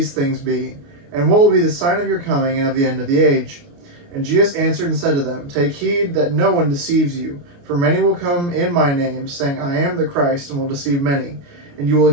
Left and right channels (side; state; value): left; late; 29 ms